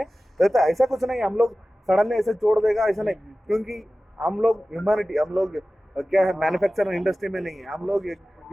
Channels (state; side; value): normal; both; correlation 0.96